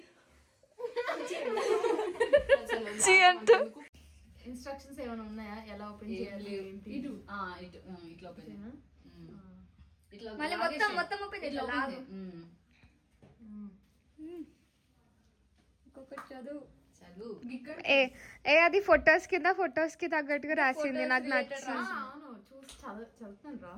ఇన్స్ట్రక్షన్స్ ఏమైనా ఉన్నాయా? ఎలా ఓపెన్ చేయాలి? ఇటు ఇట్లా ఓపెన్ చేయనా? ఇట్లా మళ్ళీ మొత్తం ఓపెన్ ఇట్లా ఓపెన్ ఇంకొకటి చదువు. ఏ అది ఫొటోస్ కి తగ్గట్టుగా రాసింది. నాకు నచ్చింది. చూసి చదువుతున్నాను రా.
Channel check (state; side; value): identical; both; correlation 1.00